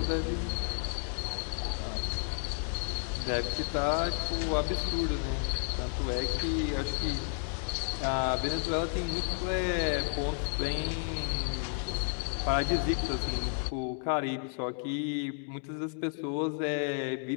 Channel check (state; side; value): silent; right; 56 dB below the other